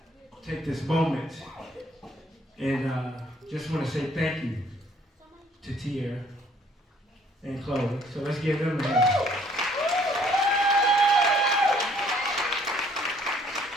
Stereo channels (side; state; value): both; normal; correlation 0.61